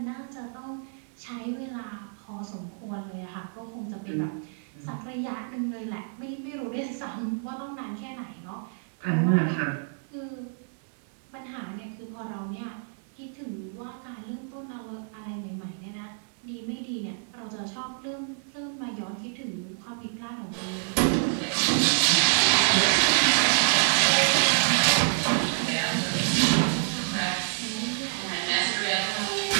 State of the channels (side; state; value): left; silent; digital silence